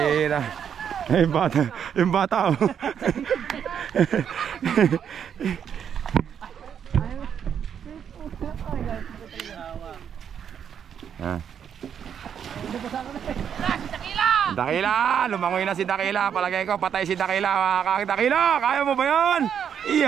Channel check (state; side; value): quieter; left; 8.2 dB